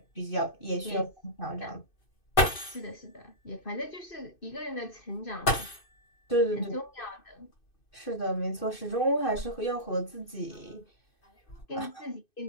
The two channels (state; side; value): late; right; 2.6 ms